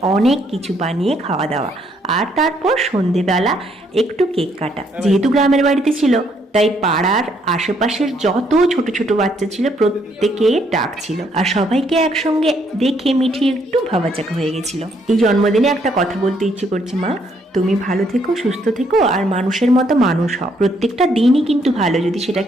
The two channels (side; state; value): both; normal; correlation 0.70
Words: অনেক কিছু বানিয়ে খাওয়া দাওয়া। আর তারপর সন্ধেবেলা একটু কেক কাটা। যেহেতু গ্রামের বাড়িতে ছিল, তাই পাড়ার আশেপাশের যত ছোট ছোট বাচ্চা ছিল প্রত্যেকে ডাকছিল, আর সবাইকে একসঙ্গে দেখে মিঠি একটু ভাবাচাকা হয়ে গেছিল। এই জন্মদিনে একটা কথা বলতে ইচ্ছে করছে, মা তুমি ভালো থেকো, সুস্থ থেকো, আর মানুষের মতো মানুষ হও। প্রত্যেকটা দিনই কিন্তু ভালো যদি